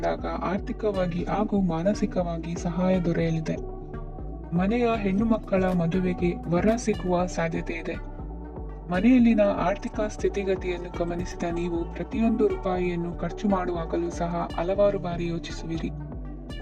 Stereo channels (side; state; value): both; identical; correlation 1.00